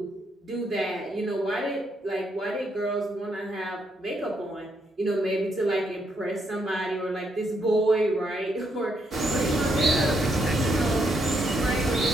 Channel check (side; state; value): both; normal; correlation 0.77